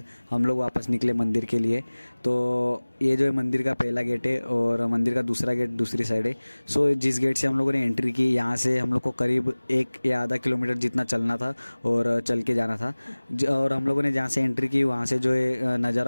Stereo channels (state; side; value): inverted; both; correlation -1.00